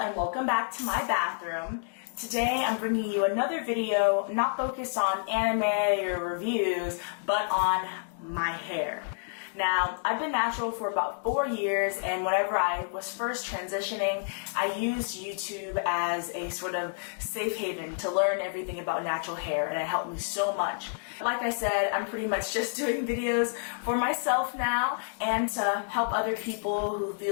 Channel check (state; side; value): silent; right; digital silence